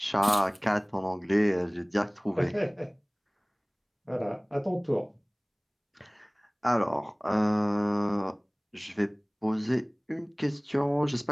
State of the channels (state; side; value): identical; both; correlation 1.00